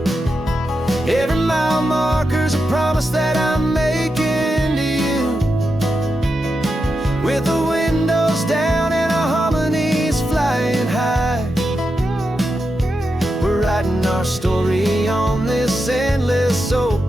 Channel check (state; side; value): normal; both; correlation 0.88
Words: Every mile marker's a promise that I'm making to you. With the windows down and our harmonies flying high, we're writing our story on this endless